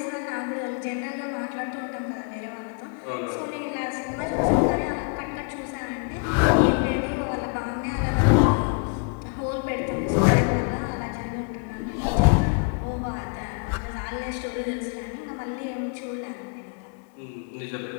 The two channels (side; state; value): right; quieter; 39.7 dB